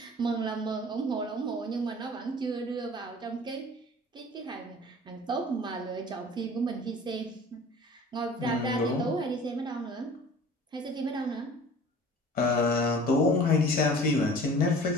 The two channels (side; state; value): both; normal; correlation 0.45